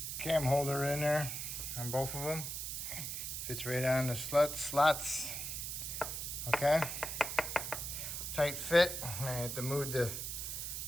cam holder in there on both of them. Fits right on the slots. Okay, tight fit. I have to move the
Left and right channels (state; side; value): noise; right; hiss, 4 dB below the sound